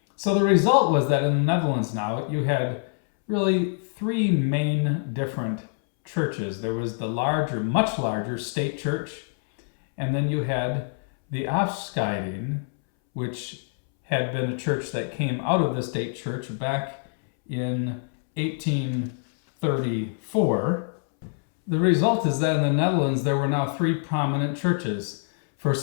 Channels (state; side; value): silent; right; 62 dB below the other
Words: So the result was that in the Netherlands now, you had really three main different churches. There was the larger, much larger state church, and then you had the Afscheiding, which had been a church that came out of the state church back in 1834. The result is that in the Netherlands, there were now three prominent churches.